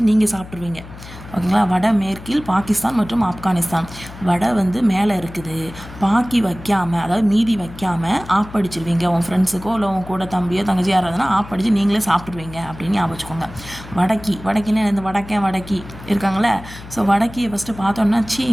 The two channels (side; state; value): left; noise; hum, 15 dB below the sound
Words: நீங்கள் சாப்பிட்ருவீங்க. ஓகேங்களா? வட மேற்கில் பாகிஸ்தான் மற்றும் ஆப்கானிஸ்தான். வடை வந்து மேலே இருக்குது, பாக்கி வைக்காமல், அதாவது மீதி வைக்காமல் ஆப்படிச்சிருவீங்க. உன் ஃப்ரெண்ட்ஸுக்கோ இல்லை உன் கூட தம்பியோ தங்கச்சி யாராவதுனா ஆப்படிச்சு நீங்களே சாப்பிட்ருவீங்க அப்படின்னு ஞாபகம் வச்சுக்கோங்க. வடக்கின்னா இந்த வடக்கி இருக்காங்களே. ஸோ வடக்கியை ஃபஸ்ட்டு பார்த்தோன்னா சீ